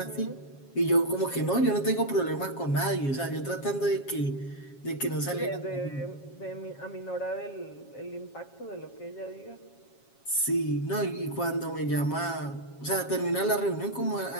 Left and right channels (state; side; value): late; right; 7.3 ms